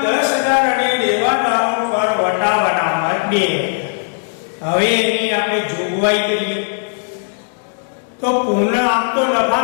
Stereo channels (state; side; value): silent; right; digital silence